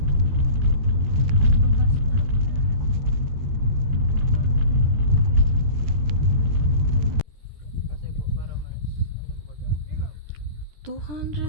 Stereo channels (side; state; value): left; late; 13 ms